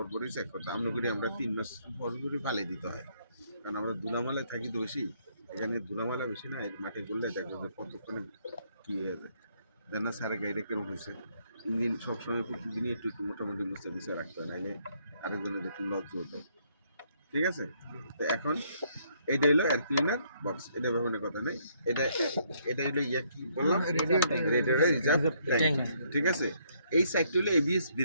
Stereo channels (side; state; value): both; inverted; correlation -0.70